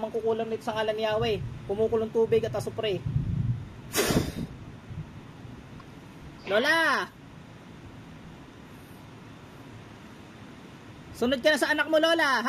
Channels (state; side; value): identical; both; correlation 1.00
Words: nito sa ngalan ni Yahweh. Kumukulong tubig at asupre. Lola! Sunod ka na sa anak mo, Lola,